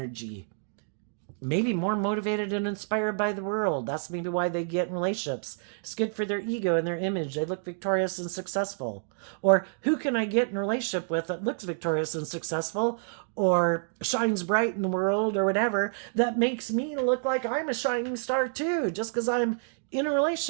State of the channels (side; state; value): left; silent; digital silence